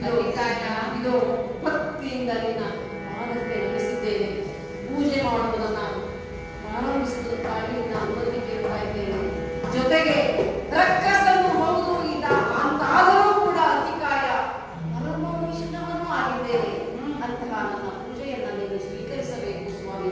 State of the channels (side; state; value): both; identical; correlation 1.00